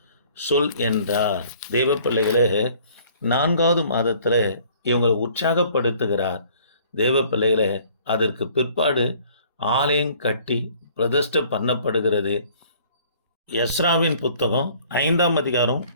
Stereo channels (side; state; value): both; inverted; correlation -0.56